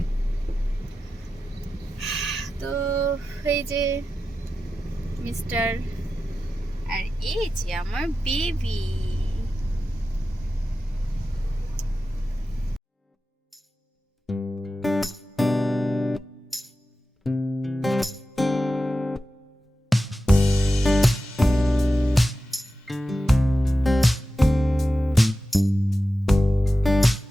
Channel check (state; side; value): normal; both; correlation 0.92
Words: তো এই যে মিস্টার, আর এই যে আমার বেবি।